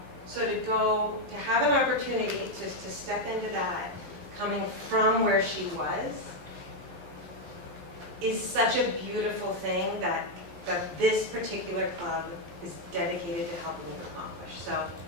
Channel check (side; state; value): left; late; 11 ms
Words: So to have an opportunity to step into that, coming from where she was, is such a beautiful thing that this particular club is dedicated to helping you accomplish. So